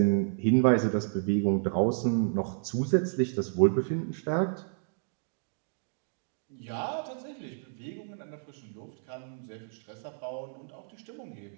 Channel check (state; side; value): silent; left; digital silence